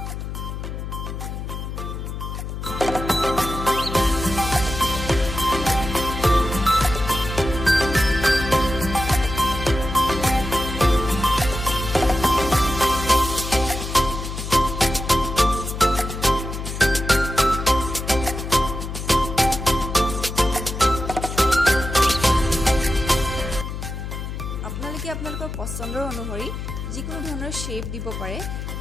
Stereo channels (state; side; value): noise; left; hum, 6 dB below the sound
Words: আপোনালোকে আপোনালোকৰ পচন্দৰ অনুসৰি যিকোনো ধৰণৰ শ্বেপ দিব পাৰে,